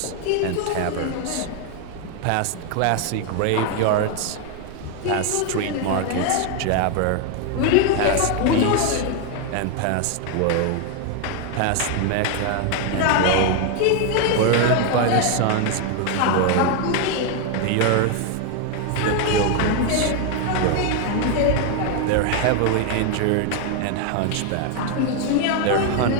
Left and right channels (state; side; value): different; both; correlation 0.01